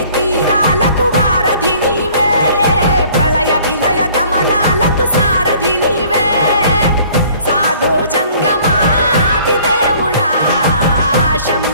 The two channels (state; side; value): inverted; both; correlation -0.54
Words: తీరాలకు వారధి నీవే, ప్రళయ విలయ గమనాలకు సారథి నీవే, సాధు జంగమాది దేవుడా